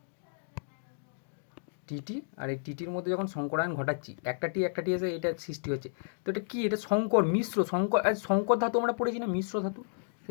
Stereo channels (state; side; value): silent; right; digital silence